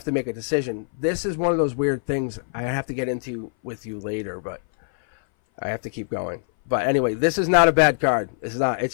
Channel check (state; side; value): silent; right; 59 dB below the other